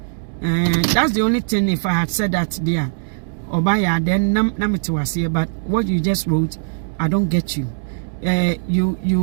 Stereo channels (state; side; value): silent; left; digital silence